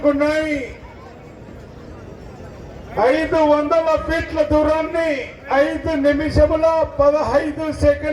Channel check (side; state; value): both; identical; correlation 1.00